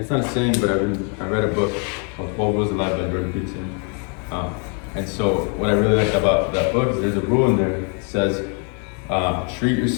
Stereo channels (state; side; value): quieter; right; 39.1 dB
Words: not a saying, but I read a book called 12 Rules of Life by Barber. And so what I really like about that book is there's a rule in there that says, treat